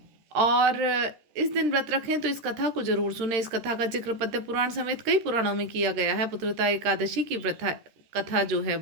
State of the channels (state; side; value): late; left; 13 ms